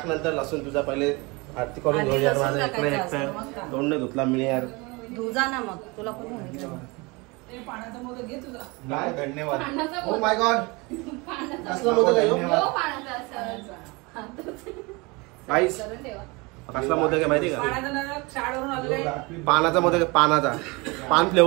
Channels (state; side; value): quieter; left; 26.2 dB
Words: नंतर लसूण. तुझा पहिले आरती करून घेऊ यार. माझा इकडे एकटं तोंड नाही धुतला मी यार. धुजा ना मग तुला कोण पाण्याचा मोदक घे तुझा. काय धन्यवाद. ओ माय गॉड कसला मोदक आहे? गाईस कसला मोदक आहे माहिती का? पानाचा मोदक आहे. पानाचा पान